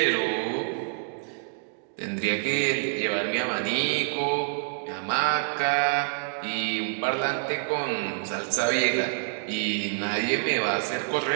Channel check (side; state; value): left; silent; 60 dB below the other